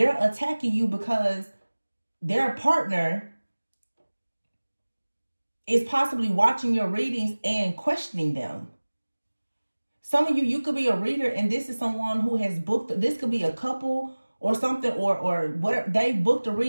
attacking you because their partner is possibly watching your readings and questioning them. Some of you could be a reader, and this is someone who has booked, this could be a couple or something, or whatever, they booked a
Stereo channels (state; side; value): inverted; both; correlation -1.00